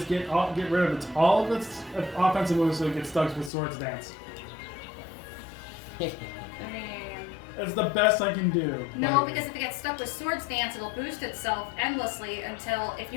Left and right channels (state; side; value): drops out; right; at 3.5 s